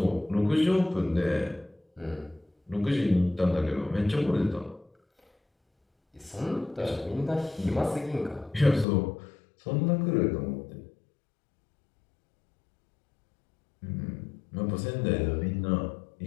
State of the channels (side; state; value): right; drops out; at 8.8 s